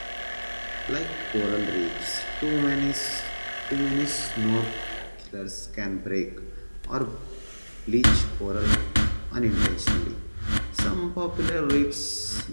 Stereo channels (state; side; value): inverted; both; correlation -1.00